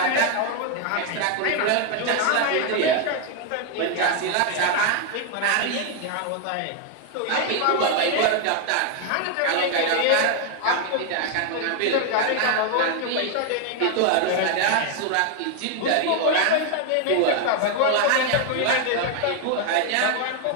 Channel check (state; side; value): different; both; correlation 0.01